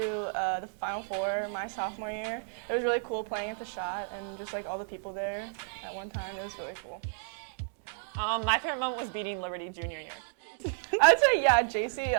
the Final Four my sophomore year. It was really cool playing at the shot and just like all the people there at one time. It was really cool. My favorite moment was beating Liberty junior year. I would say, yeah, JC,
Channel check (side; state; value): left; silent; digital silence